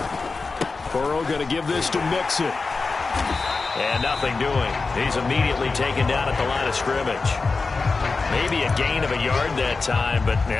Burrow going to give this to Mixon. And nothing doing. He's immediately taken down at the line of scrimmage. Maybe a gain of a yard that time, but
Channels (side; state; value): right; quieter; 4.1 dB